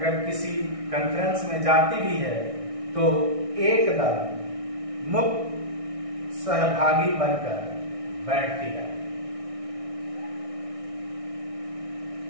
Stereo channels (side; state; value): left; late; 1.6 ms